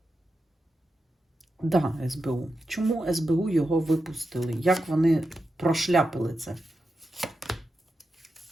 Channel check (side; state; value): both; normal; correlation 0.89